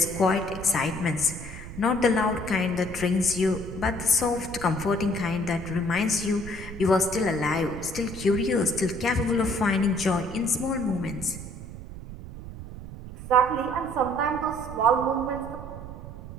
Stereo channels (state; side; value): noise; right; rumble, 12 dB below the sound